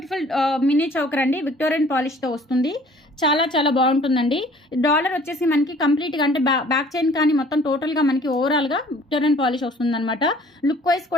మినీ చౌకర్ అండి. విక్టోరియన్ పాలిష్తో వస్తుంది. చాలా చాలా బాగుంటుందండి. డాలర్ వచ్చేసి మనకి కంప్లీట్గా అంటే బ్యాక్ చైన్ కానీ మొత్తం టోటల్గా మనకి ఓవరాల్గా విక్టోరియన్ పాలిష్ వస్తుందన్నమాట. లుక్ వైజ్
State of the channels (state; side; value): normal; both; correlation 0.53